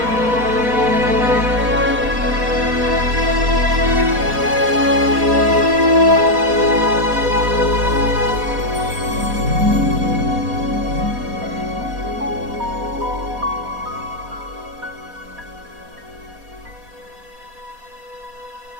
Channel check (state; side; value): late; left; 4.1 ms